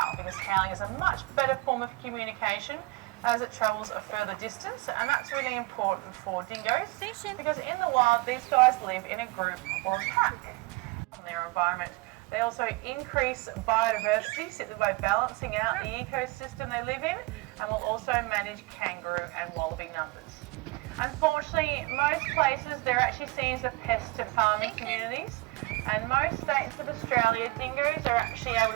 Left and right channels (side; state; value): left; quieter; 23.7 dB